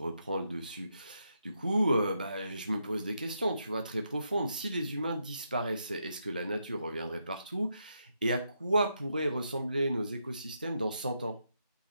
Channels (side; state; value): both; inverted; correlation -0.81